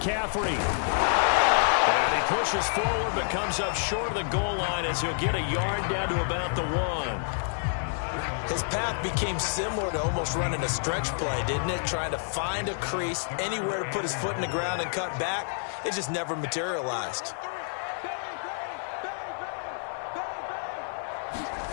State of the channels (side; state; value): right; silent; 59 dB below the other